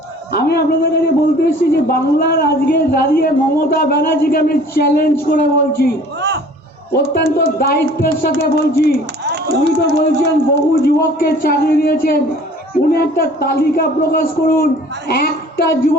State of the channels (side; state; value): both; normal; correlation 0.50